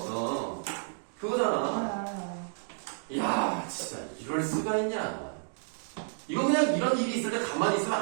그거잖아. 이야, 진짜 이럴 수가 있냐. 이거 그냥 이런 일이 있을 때 가만히 있으면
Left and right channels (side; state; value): left; silent; digital silence